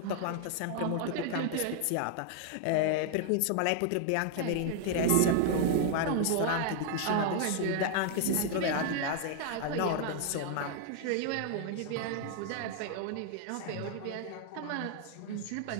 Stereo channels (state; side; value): different; both; correlation 0.00